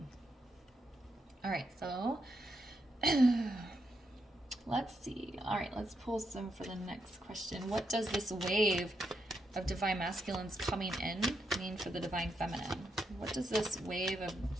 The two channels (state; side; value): normal; both; correlation 0.81